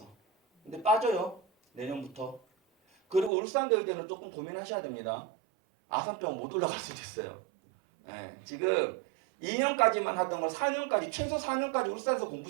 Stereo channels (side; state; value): left; drops out; at 3.3 s